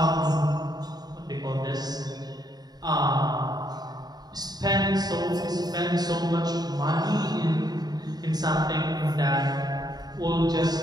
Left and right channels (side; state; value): left; late; 0.19 ms